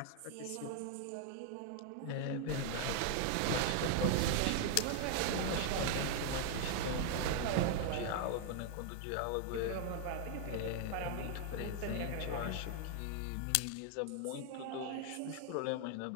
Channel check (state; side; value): different; both; correlation 0.00